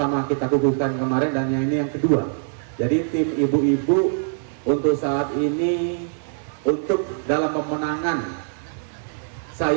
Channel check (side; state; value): left; silent; 63 dB below the other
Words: kita kukuhkan kemarin, dan yang ini yang kedua. Jadi tim ibu-ibu untuk saat ini, untuk dalam pemenangan